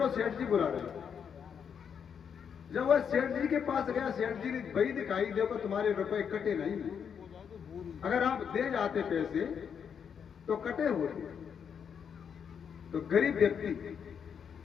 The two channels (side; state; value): right; quieter; 7.4 dB